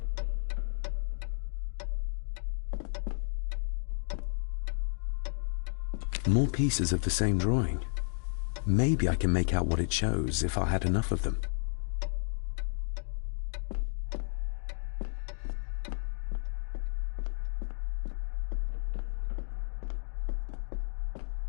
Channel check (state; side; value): silent; right; digital silence